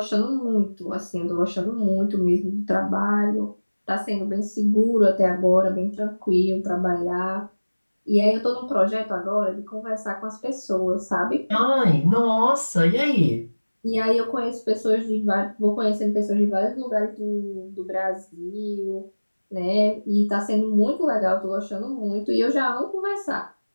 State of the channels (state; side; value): inverted; both; correlation -1.00